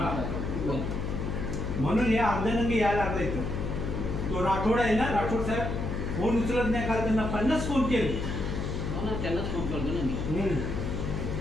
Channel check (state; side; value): noise; left; hum, 2 dB below the sound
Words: म्हणून या अर्ध्यानंगी यायला लागला इथं. तो राठोड आहे ना, राठोड साहेब फोन उचलत नाही. काल त्यांना 50 फोन केले. त्यांनाच फोन करतो ना मी.